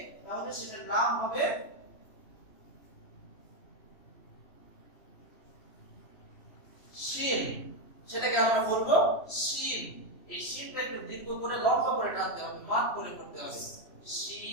তাহলে সেটার নাম হবে শিন। সেটাকে আমরা বলবো শিন। এই শিনটা একটু দীর্ঘ করে লম্বা করে টানতে হবে, মাত করে করতে হবে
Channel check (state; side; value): late; right; 3.0 ms